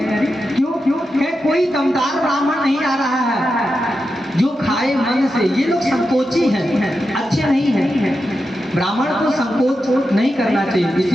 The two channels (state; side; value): normal; both; correlation 0.89